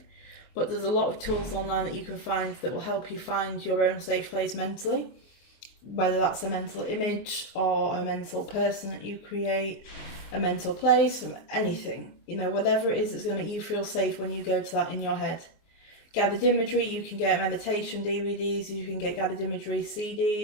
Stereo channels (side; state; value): right; late; 24 ms